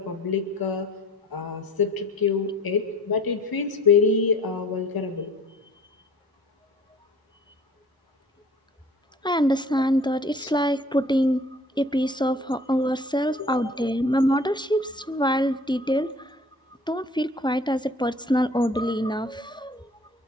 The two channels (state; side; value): normal; both; correlation 0.51